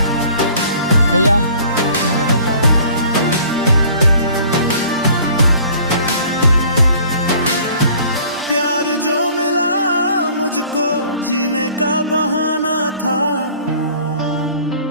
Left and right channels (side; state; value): both; inverted; correlation -0.51